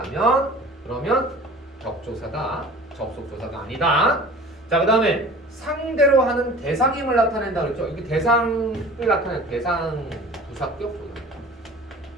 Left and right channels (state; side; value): normal; both; correlation 0.43